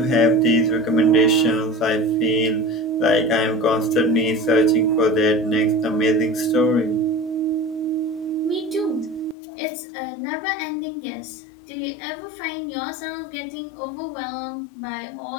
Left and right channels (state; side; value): drops out; right; at 9.3 s